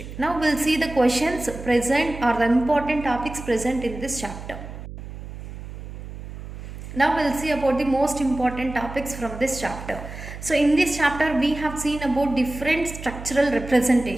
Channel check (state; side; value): noise; right; hum, 11 dB below the sound